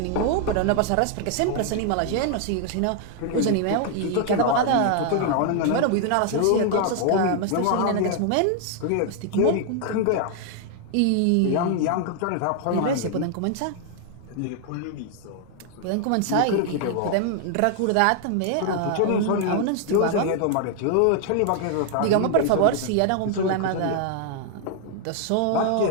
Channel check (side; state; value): both; different; correlation 0.00